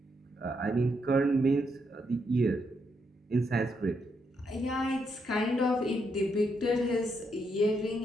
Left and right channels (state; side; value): normal; both; correlation 0.79